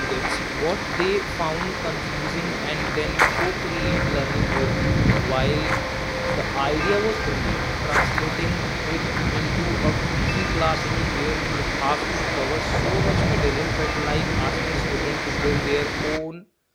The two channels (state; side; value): identical; both; correlation 1.00